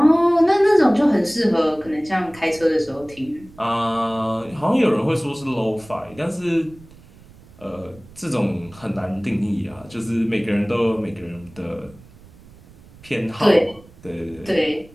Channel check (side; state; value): right; noise; rumble, 23 dB below the sound